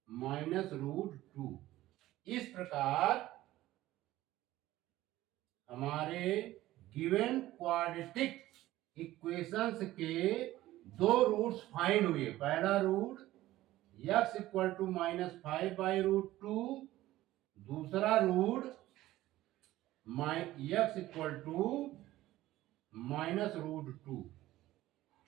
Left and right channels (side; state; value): left; quieter; 15.8 dB